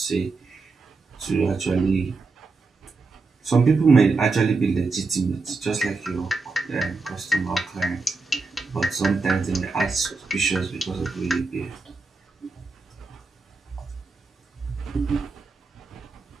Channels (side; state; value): left; quieter; 4.0 dB